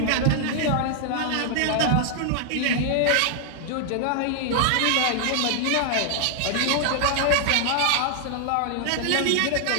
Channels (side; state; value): both; different; correlation 0.00